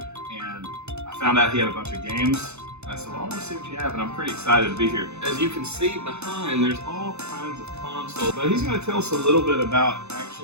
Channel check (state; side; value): late; left; 0.81 ms